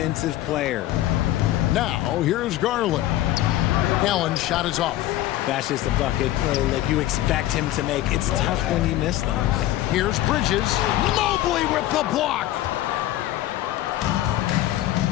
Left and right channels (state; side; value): quieter; right; 14.6 dB